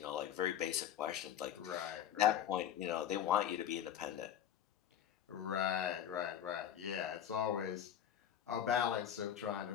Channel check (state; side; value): quieter; right; 9.9 dB